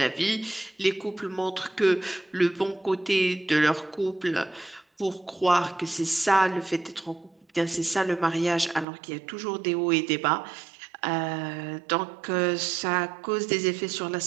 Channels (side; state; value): left; drops out; at 8.8 s